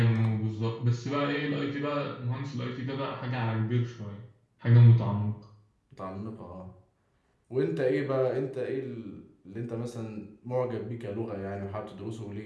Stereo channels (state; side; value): identical; both; correlation 1.00